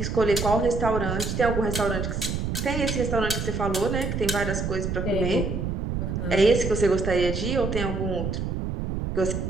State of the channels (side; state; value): right; noise; rumble, 2 dB below the sound